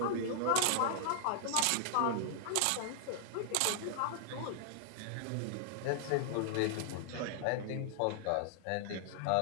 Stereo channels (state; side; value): different; both; correlation 0.00